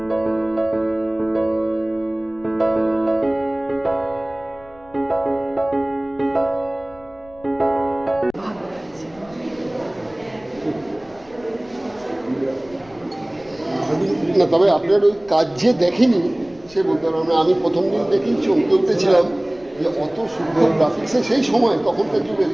না, তবে আপনার ওই কাজ যে দেখেনি সে বলতে পারলাম না। আমি প্রথম দিন দেখেই চমকে উঠেছিলাম যে অত সুন্দর গ্রাফিক্সে সেই সময় তখনকার যুগে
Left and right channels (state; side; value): noise; left; rumble, 26 dB below the sound